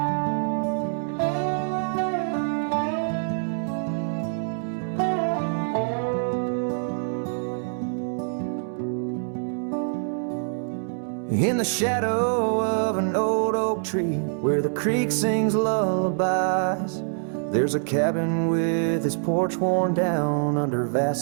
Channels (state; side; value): silent; left; digital silence